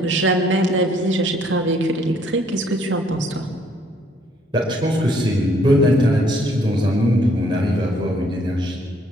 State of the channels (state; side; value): normal; both; correlation 0.65